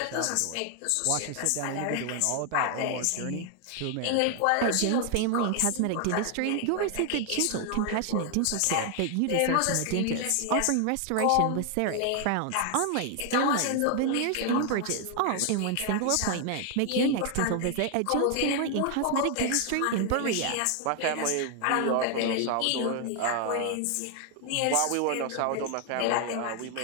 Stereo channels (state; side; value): different; both; correlation 0.00